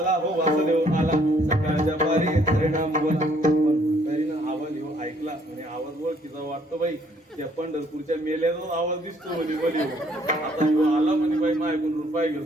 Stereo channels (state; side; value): normal; both; correlation 0.64